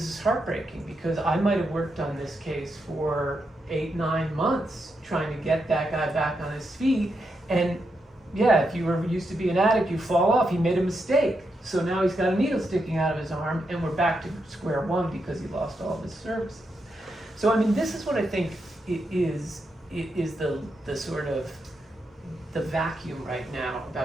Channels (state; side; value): normal; both; correlation 0.83